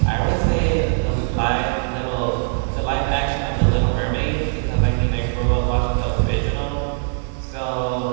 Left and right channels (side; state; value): left; silent; digital silence